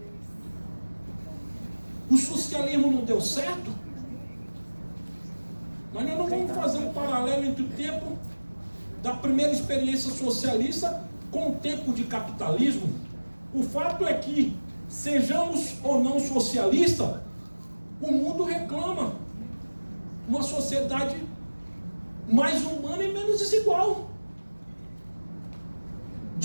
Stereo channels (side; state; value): both; inverted; correlation -1.00